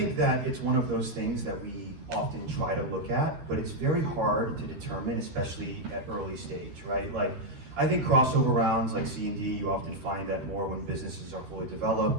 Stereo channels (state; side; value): late; left; 13 ms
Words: that it's one of those things that we often try to look at, but it's very hard to determine, especially at early stage, right? Like, I think crossover rounds like C&D, you often find that more when businesses are fully